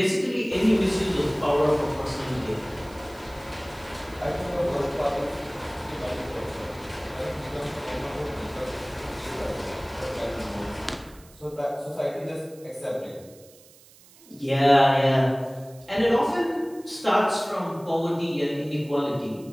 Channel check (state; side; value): noise; right; hiss, 24 dB below the sound